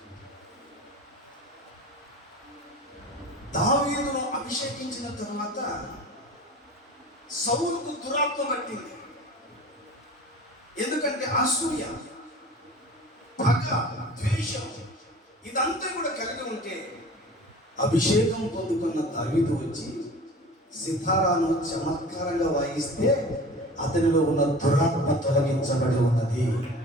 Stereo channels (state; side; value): normal; both; correlation 0.39